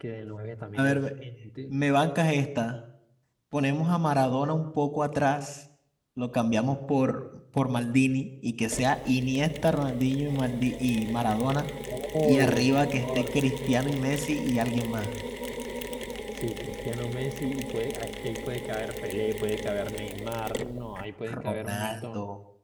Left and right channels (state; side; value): identical; both; correlation 1.00